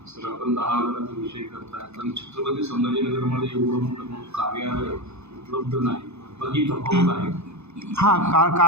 सर, आपण 10,000चा विषय करताय पण छत्रपती संभाजीनगरमध्ये एवढं मोठं कार्यालय उपलब्ध नाही, बाकी तफावत आहे. हां,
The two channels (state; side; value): late; left; 0.81 ms